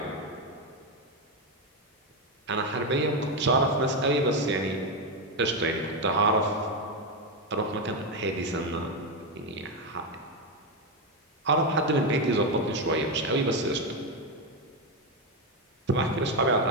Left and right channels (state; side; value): normal; both; correlation 0.08